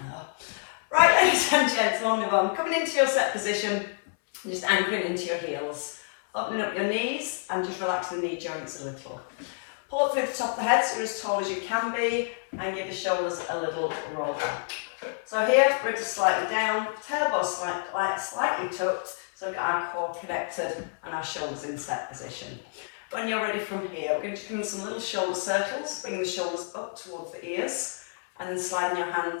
no. Right, ladies and gents, on move on. Coming into your set position, just anchoring into your heels. Opening up your knees and just relax the knee joints a little. Pull up through the top of the head so you're as tall as you can be and give the shoulders a little roll back. So here, ribs are slightly down, tailbone slightly tucked, so we've got our core connected and our shoulders in set position. When you're ready from here, we're going to come in some little shoulder circles, bringing the shoulders up towards the ears and then sliding your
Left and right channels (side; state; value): right; silent; 59 dB below the other